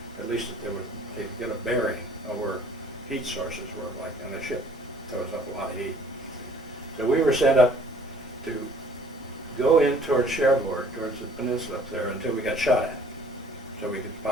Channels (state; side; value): normal; both; correlation 0.54